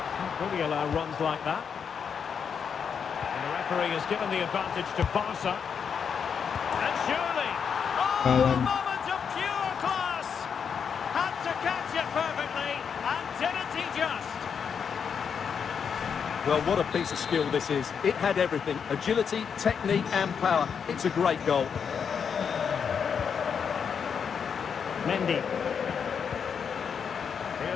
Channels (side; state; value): right; quieter; 6.9 dB